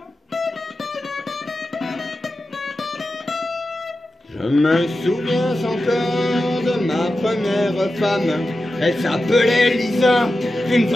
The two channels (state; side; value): normal; both; correlation 0.92